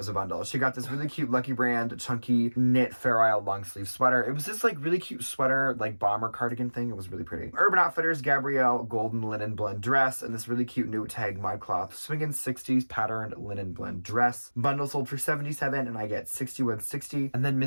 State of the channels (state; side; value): inverted; both; correlation -1.00